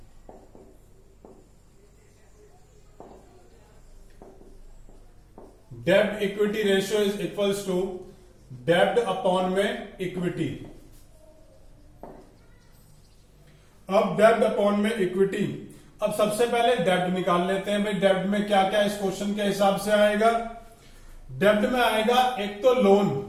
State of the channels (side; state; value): both; identical; correlation 1.00